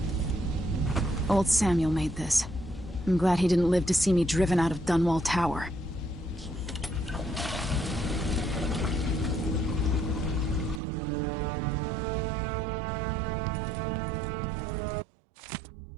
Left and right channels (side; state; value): left; drops out; at 10.8 s